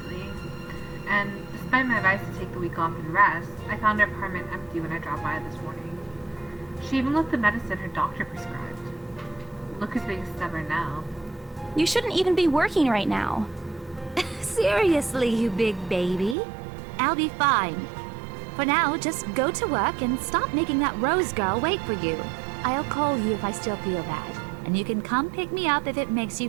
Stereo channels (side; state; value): left; drops out; at 16.4 s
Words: And despite my advice to take the week off and rest, I found her apartment empty when I dropped by this morning. She even left the medicine her doctor prescribed. Look who's being stubborn now. You shouldn't even be working right now. Seriously, you big baby. I'll be fine. For now, just go to work and stop making that Rose girl wait for you. I'll call you if I still feel bad. And you can come pick me up if it makes you